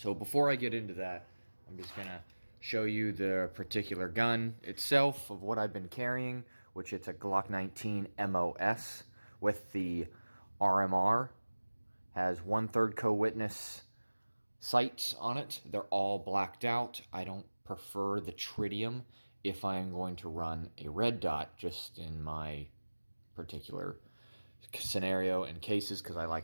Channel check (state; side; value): inverted; both; correlation -1.00